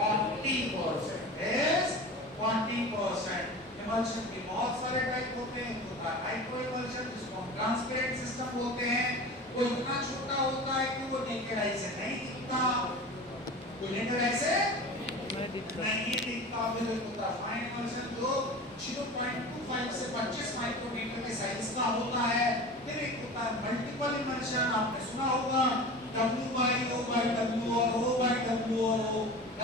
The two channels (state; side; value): normal; both; correlation 0.34